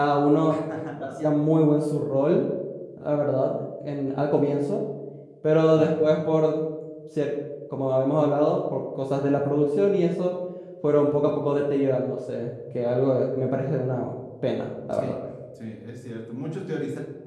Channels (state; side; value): identical; both; correlation 1.00